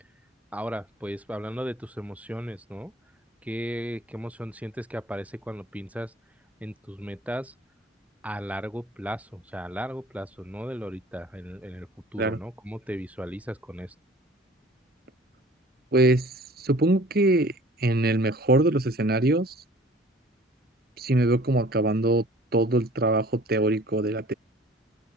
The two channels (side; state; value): both; normal; correlation 0.49